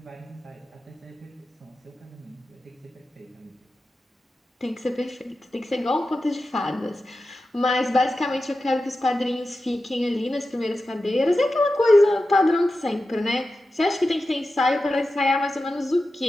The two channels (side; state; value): both; normal; correlation 0.92